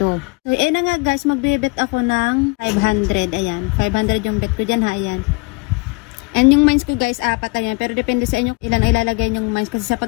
So, na nga guys, mag-bet ako ng 500, ayan. 500 yung bet ko dyan, ha, ayan. And yung mines ko guys, 4 ayan. Pero depende sa inyo ilang ilalagay yung mines. Kasi sa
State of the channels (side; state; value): right; quieter; 29.2 dB